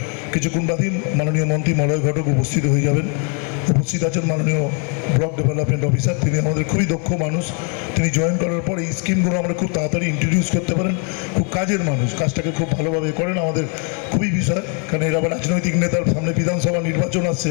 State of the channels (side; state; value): right; quieter; 37.8 dB